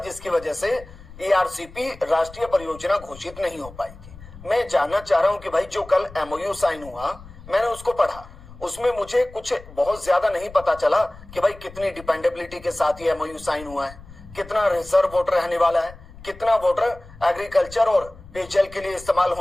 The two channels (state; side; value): noise; left; rumble, 19 dB below the sound